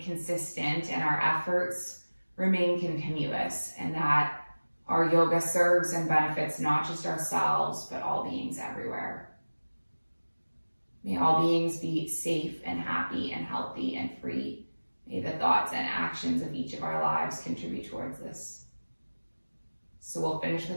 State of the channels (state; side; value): inverted; both; correlation -1.00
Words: and our efforts remain continuous, and that our yoga serves and benefits not just ourselves, but all beings everywhere. May all beings be safe and happy and healthy and free. May the thoughts and actions of each of our lives contribute towards this. So we'll finish